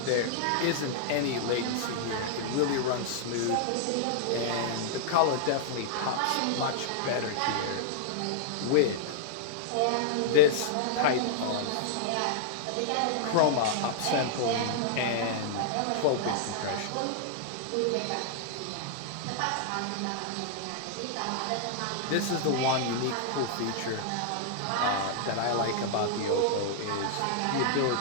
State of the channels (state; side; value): different; both; correlation -0.01